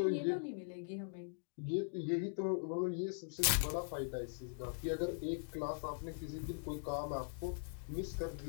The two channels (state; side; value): silent; right; digital silence